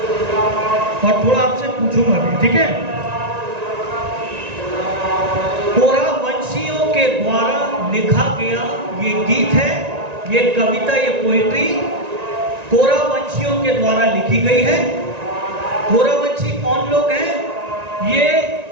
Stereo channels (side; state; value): left; late; 1.9 ms